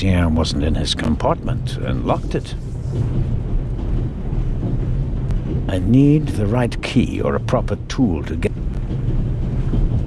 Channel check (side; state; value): both; identical; correlation 1.00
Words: wasn't in his compartment and locked it. I need the right key or a proper tool to get...